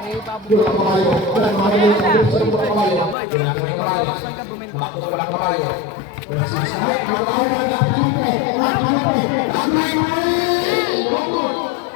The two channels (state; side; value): drops out; right; at 3.2 s